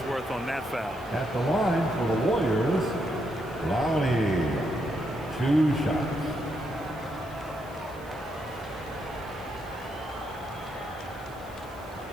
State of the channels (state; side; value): noise; right; hiss, 24 dB below the sound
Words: worth on that foul. At the line for the Warriors, Clowney. 2 shots.